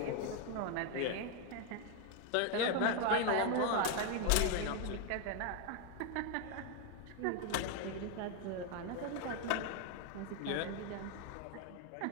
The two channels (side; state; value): both; different; correlation 0.01